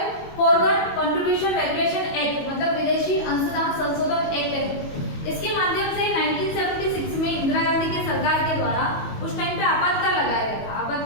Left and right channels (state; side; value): late; right; 22 ms